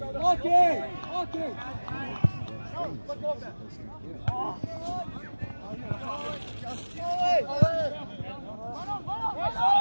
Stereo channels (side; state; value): both; inverted; correlation -1.00